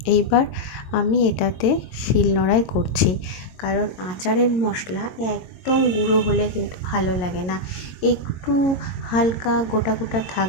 এইবার আমি এটাতে শিলনোড়ায় করছি, কারণ আচারের মশলা একদম গুঁড়ো হলে কিন্তু ভালো লাগে না, একটু হালকা গোটা গোটা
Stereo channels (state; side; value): late; right; 22 ms